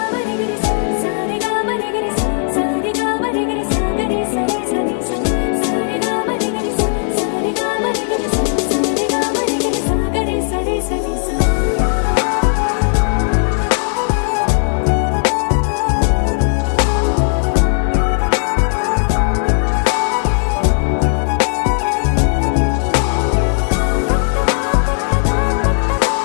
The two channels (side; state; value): right; silent; 65 dB below the other